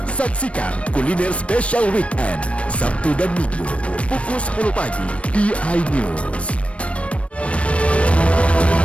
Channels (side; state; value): right; late; 0.062 ms